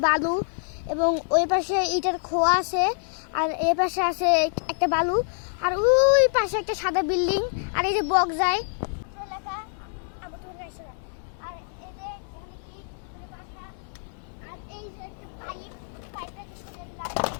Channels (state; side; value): silent; right; digital silence